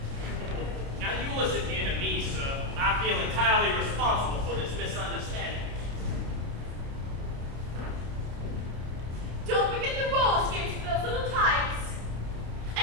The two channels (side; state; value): left; late; 29 ms